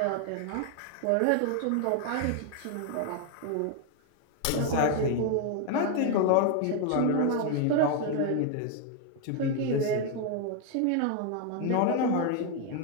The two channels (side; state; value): both; different; correlation 0.00